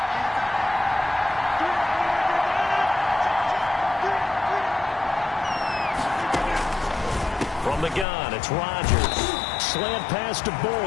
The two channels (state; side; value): drops out; right; at 8.1 s